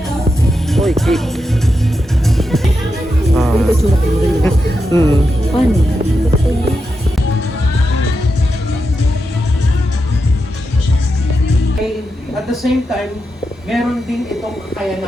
Oy, cake. Paano? At the same time, meron din itong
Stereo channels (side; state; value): both; normal; correlation 0.87